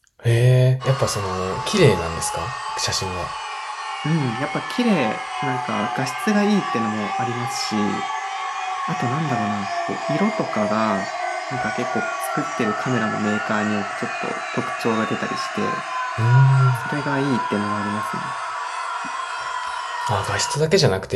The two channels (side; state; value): both; identical; correlation 1.00